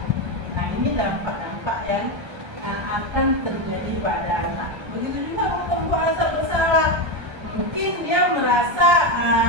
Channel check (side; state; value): left; late; 1.3 ms